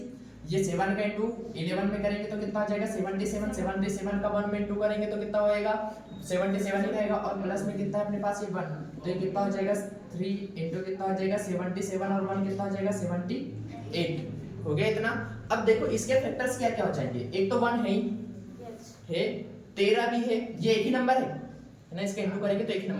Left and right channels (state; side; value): identical; both; correlation 1.00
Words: ये 7 का इंटू 11 में करेंगे तो कितना आ जाएगा 77, 77 का 1 में इंटू करेंगे तो कितना होएगा 77 ही रहेगा, और प्लस में कितना है अपने पास ये 1, तो ये कितना हो जाएगा 3 इंटू कितना हो जाएगा 77 और 1 कितना हो जाएगा 78 हो गया इतना। अब देखो इसके फैक्टर्स क्या क्या हो जाएंगे, एक तो 1 है ही है, 13 भी है, ये एक ही नंबर है ना, इसका इंटू करेंगे तो एक ही